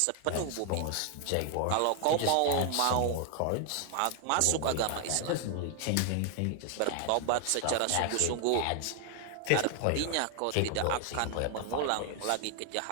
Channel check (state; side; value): different; both; correlation 0.00